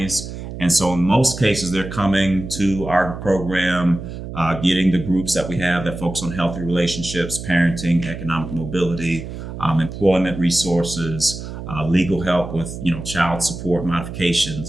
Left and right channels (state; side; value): noise; right; hum, 9 dB below the sound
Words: and so in most cases they're coming to our program, getting the groups that we have that focus on healthy relationships, parenting, economic mobility, employment resources, legal help with child support modifications,